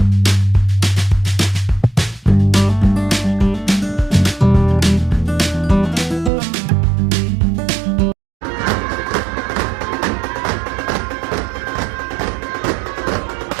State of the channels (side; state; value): left; drops out; at 6.3 s